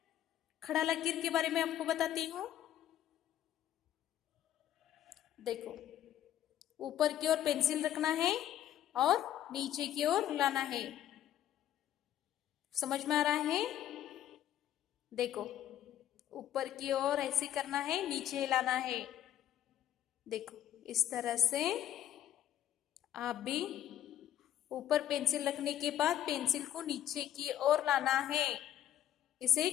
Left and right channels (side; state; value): right; quieter; 11.5 dB